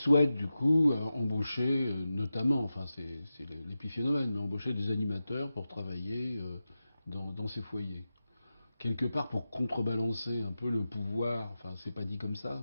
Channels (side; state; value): both; inverted; correlation -0.92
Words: du coup embaucher, notamment, enfin c'est l'épiphénomène, mais embaucher des animateurs pour travailler dans ces foyers. Quelque part pour contrebalancer un peu le pouvoir, enfin c'est pas dit comme ça,